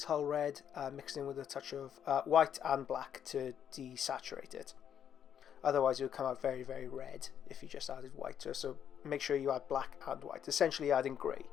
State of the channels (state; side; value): quieter; right; 8.9 dB